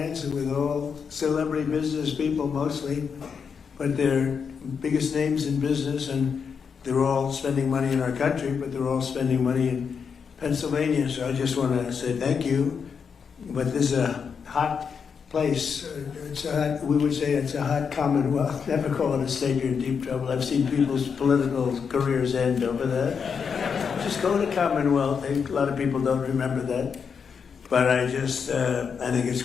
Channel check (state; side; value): quieter; right; 6.3 dB